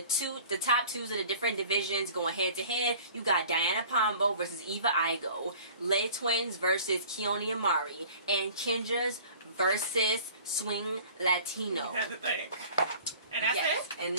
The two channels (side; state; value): both; inverted; correlation -0.47